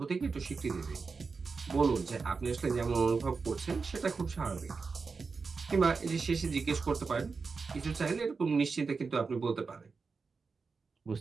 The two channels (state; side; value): quieter; left; 4.7 dB